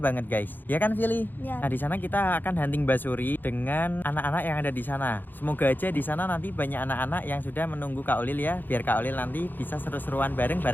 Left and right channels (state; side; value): late; right; 0.089 ms